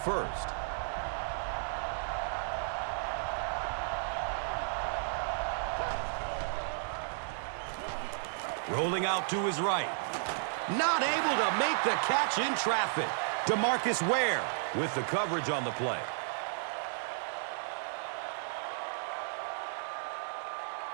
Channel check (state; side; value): silent; left; digital silence